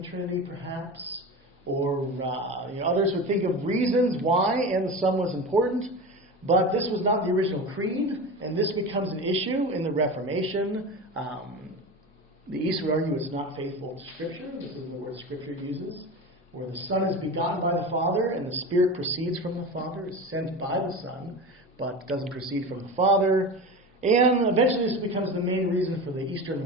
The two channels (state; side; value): normal; both; correlation 0.28